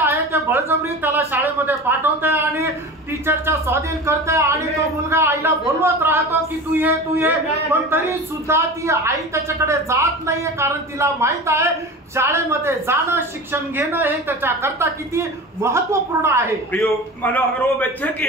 ते बळजबरी त्याला शाळेमध्ये पाठवते आणि टीचरच्या स्वाधीन करते. आणि तो मुलगा आईला बोलवत राहतो की तू ये पण तरी सुद्धा ती आई त्याच्याकडे जात नाहीये. कारण तिला माहित आहे शाळेमध्ये जाणं, शिक्षण घेणं हे त्याच्याकरता किती महत्वपूर्ण आहे. मानो अगर वो बच्चे की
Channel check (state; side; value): normal; both; correlation 0.32